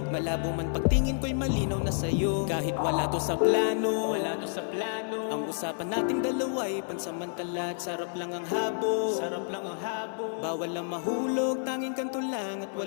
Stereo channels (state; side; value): silent; right; 58 dB below the other